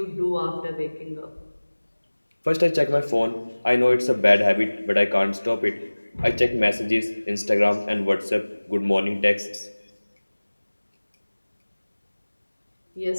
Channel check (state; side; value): inverted; both; correlation -1.00